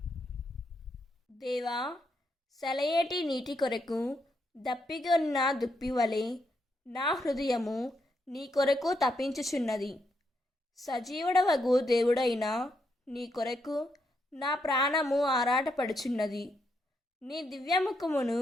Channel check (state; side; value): normal; both; correlation 0.79